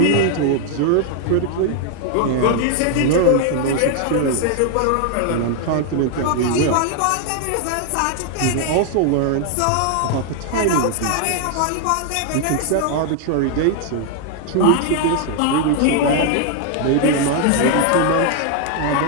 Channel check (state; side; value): different; both; correlation 0.00